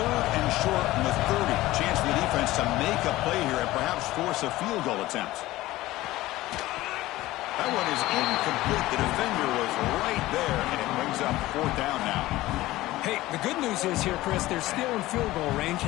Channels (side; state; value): right; quieter; 17.3 dB